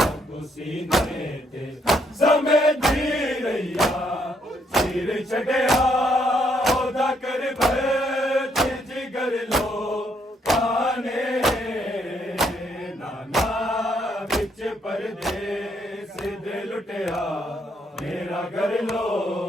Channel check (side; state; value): both; normal; correlation 0.72